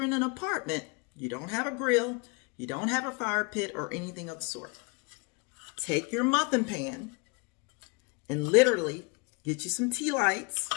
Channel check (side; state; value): right; quieter; 29.9 dB